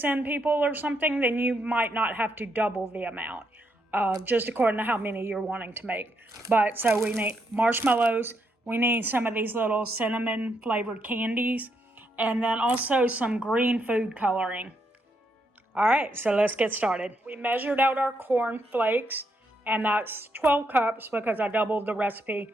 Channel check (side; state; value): both; normal; correlation 0.78